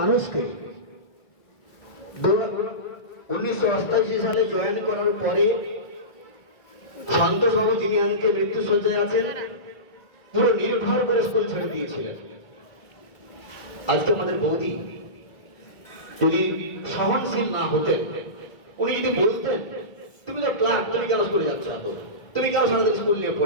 1988 সালে জয়েন করার পরে সন্তোষবাবু যিনি আজকে মৃত্যুশয্যায় আছেন, পুরো নির্ভর করে স্কুল ছেড়ে দিয়েছিলেন। আজকে আমাদের বৌদি যদি সহনশীল না হতেন, উনি যদি বলতেন তুমি তো ক্লাস, তুমি কেন স্কুলে যাচ্ছ, তুমি কেন সারাদিন স্কুল নিয়ে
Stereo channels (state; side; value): late; right; 1.8 ms